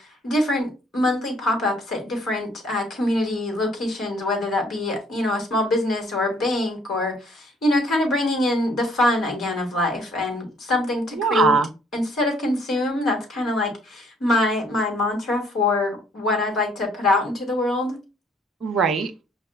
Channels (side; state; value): both; normal; correlation 0.62